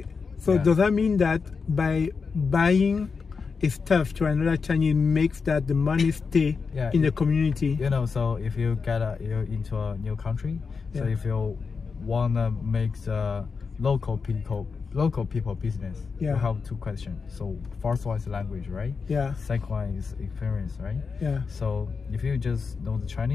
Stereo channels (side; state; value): right; quieter; 5.1 dB